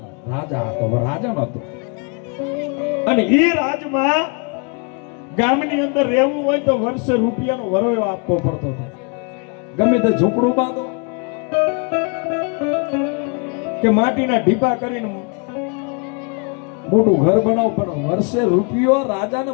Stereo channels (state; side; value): quieter; right; 36.1 dB